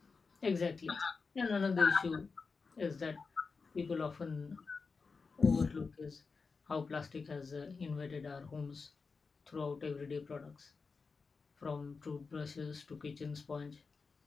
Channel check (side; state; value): right; quieter; 4.7 dB